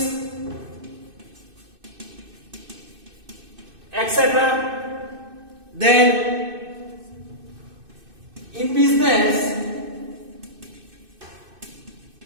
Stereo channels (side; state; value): left; late; 2.6 ms